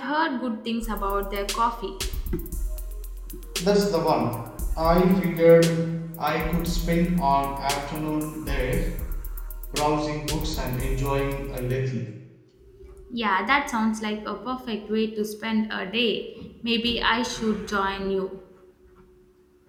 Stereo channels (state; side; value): identical; both; correlation 1.00